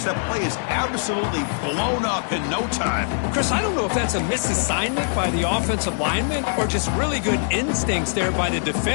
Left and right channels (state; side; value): silent; right; digital silence